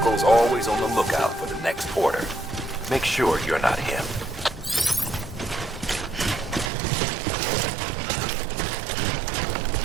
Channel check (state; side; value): drops out; left; at 6.7 s